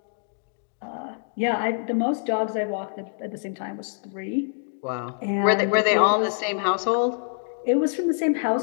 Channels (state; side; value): silent; right; digital silence